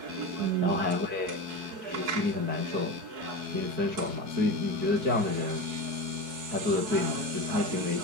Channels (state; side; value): late; left; 4.6 ms